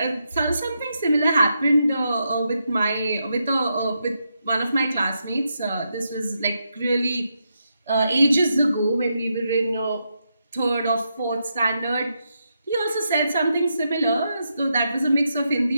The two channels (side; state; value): both; inverted; correlation -0.83